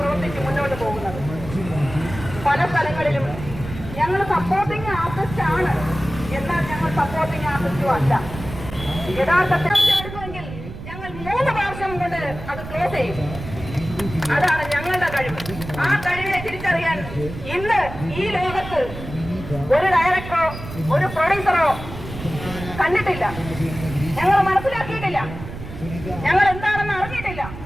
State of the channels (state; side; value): noise; right; rumble, 11 dB below the sound